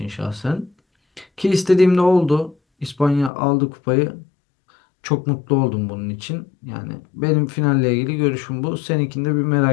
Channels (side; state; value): right; drops out; at 3.3 s